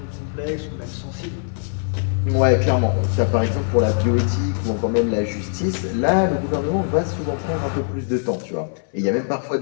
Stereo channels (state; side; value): silent; right; 63 dB below the other